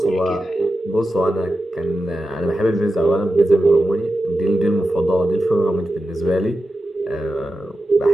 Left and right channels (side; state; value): both; normal; correlation 0.91